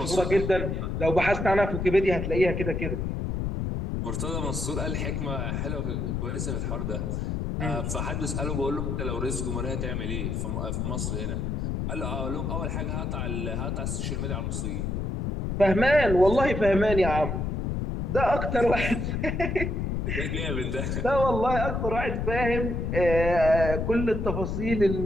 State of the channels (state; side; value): noise; left; rumble, 1 dB below the sound